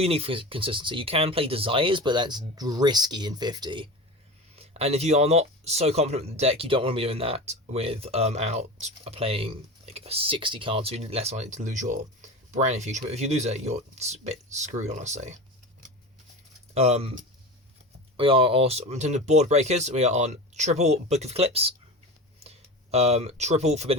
you need for consistency. You can play Desires, but that's risky in 50. And if you are not so confident with the deck, you don't want to be doing that without playing like 60 cards, so you're less likely to lose your Brand Infusion. But if you lose it, you're a bit screwed, honestly. We are also, in terms of board breakers, we are on triple Book of Eclipse, triple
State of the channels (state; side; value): normal; both; correlation 0.29